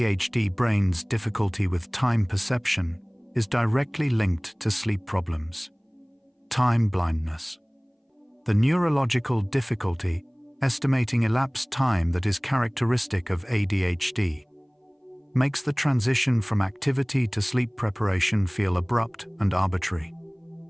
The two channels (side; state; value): both; identical; correlation 1.00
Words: brain's difficulty with time perception is directly linked to sleep problems. Time blindness. The neurological difficulty estimating elapsed time that is characteristic of ADHD makes the transition from activity to sleep preparation feel abrupt and arbitrary.